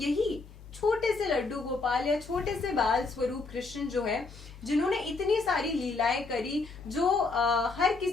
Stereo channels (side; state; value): right; quieter; 3.8 dB